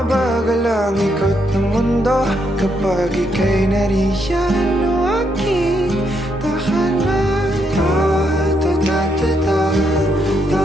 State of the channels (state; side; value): normal; both; correlation 0.77